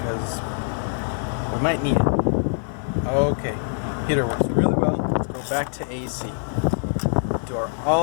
we might need it. Okay, heater works really well. Let's go back to AC. Do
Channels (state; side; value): silent; right; digital silence